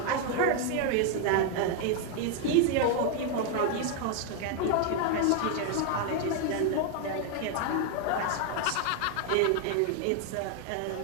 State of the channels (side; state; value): both; different; correlation 0.01